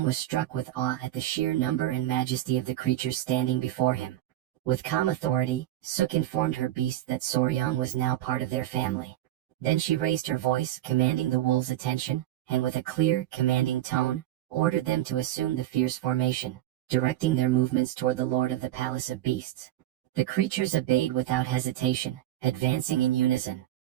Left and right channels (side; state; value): left; quieter; 14.0 dB